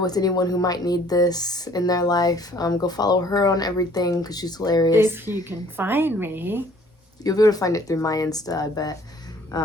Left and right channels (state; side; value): normal; both; correlation 0.56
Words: anyone who might need this in their life. Go follow her on everything because she's hilarious. If you can find me. You'll be able to find it through my Insta, I bet.